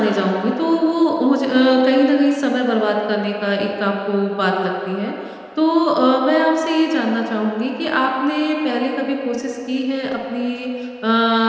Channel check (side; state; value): both; identical; correlation 1.00